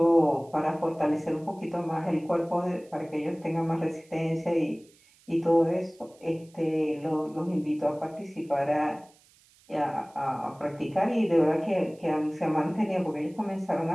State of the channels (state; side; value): noise; right; hiss, 30 dB below the sound